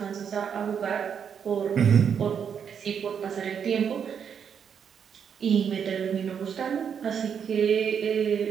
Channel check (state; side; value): quieter; left; 7.5 dB